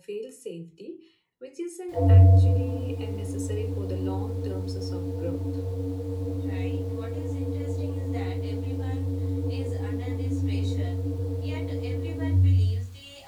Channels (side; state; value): both; identical; correlation 1.00